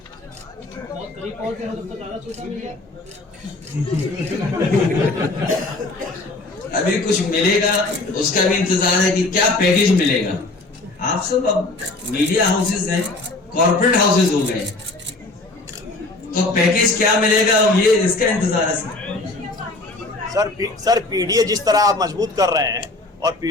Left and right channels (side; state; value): right; quieter; 3.1 dB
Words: अभी कुछ मिलेगा उसका भी इंतजार है कि क्या पैकेज मिलेगा। आप सब अब मीडिया हाउसेस हैं, कॉर्पोरेट हाउसेस हो गए, तो पैकेज क्या मिलेगा ये इसका इंतजार है सर पीडीए जिस तरह आप मजबूत कर रहे हैं और